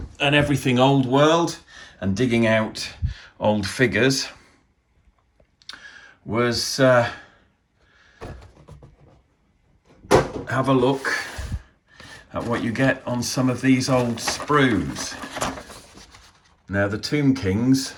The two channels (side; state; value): both; identical; correlation 1.00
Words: and everything Old World and digging out old figures was have a look at what you get on some of these old sprues. Now the Tomb Kings,